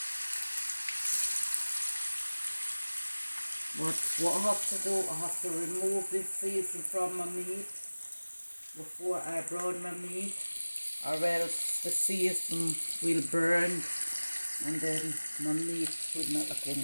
But what I have to do, I have to remove this season from my meat before I brown my meat, or else the season will burn and then my meat will not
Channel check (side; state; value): both; inverted; correlation -1.00